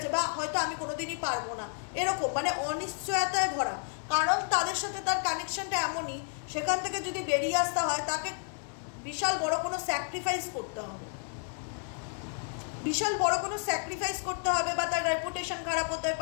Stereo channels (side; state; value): right; silent; 56 dB below the other